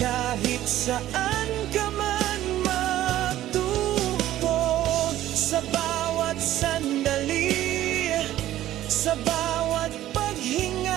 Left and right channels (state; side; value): quieter; left; 13.7 dB